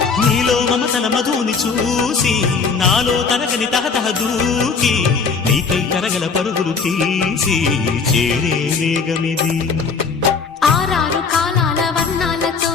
నీలో మమతల మధుని చూసి నాలో తరగని తహతహ దూకి నీకై తరగల పరుగులు తీసి చేరే వేగమిది. ఆరారు కాలాల వర్ణాలతో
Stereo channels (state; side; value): quieter; right; 5.1 dB